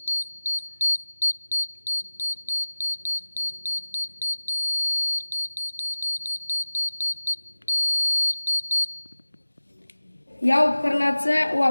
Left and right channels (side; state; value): both; inverted; correlation -1.00